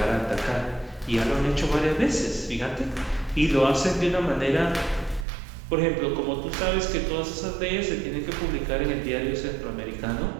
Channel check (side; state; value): left; drops out; at 5.2 s